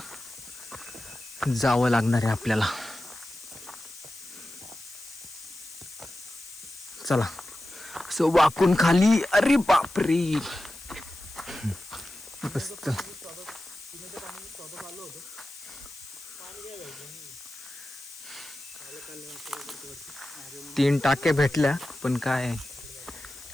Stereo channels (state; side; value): noise; left; hiss, 17 dB below the sound